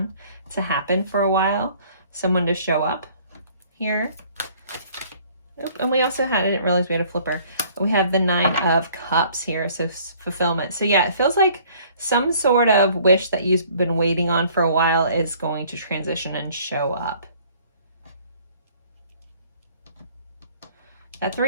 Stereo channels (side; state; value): both; inverted; correlation -0.56